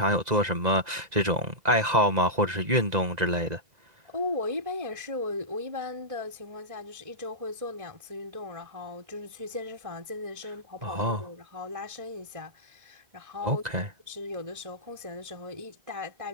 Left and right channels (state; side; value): late; left; 2.0 ms